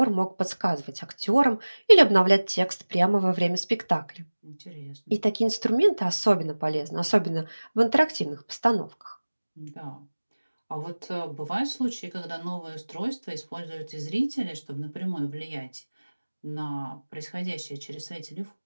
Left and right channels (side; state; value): both; inverted; correlation -1.00